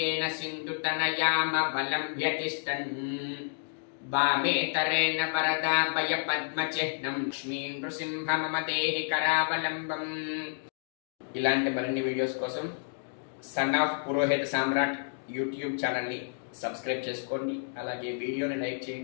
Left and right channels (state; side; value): silent; right; digital silence